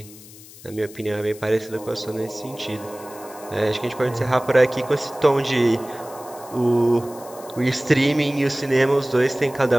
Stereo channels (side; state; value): left; noise; hiss, 19 dB below the sound